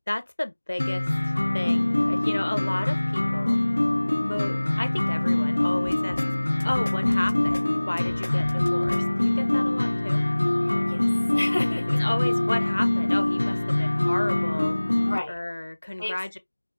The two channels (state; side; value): inverted; both; correlation -1.00